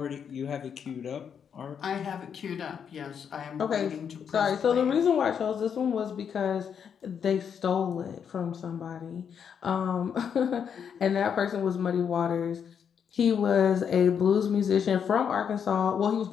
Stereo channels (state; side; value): quieter; right; 7.5 dB